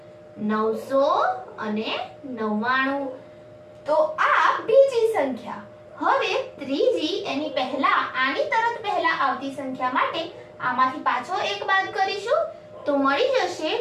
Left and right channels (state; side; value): identical; both; correlation 1.00